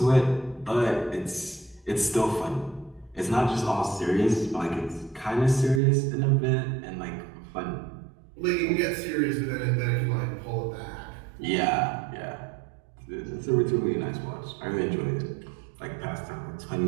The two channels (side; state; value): left; drops out; at 5.8 s